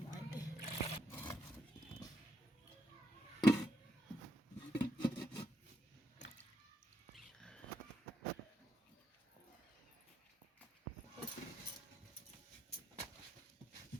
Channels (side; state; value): both; normal; correlation 0.80